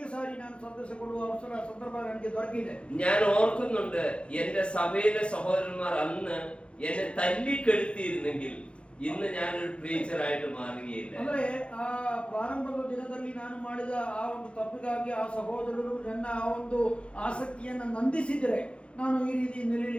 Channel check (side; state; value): right; late; 0.058 ms